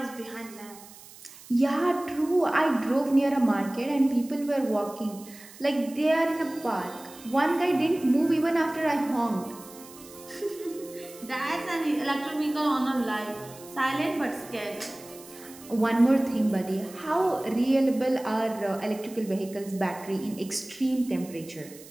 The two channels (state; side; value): noise; right; hiss, 19 dB below the sound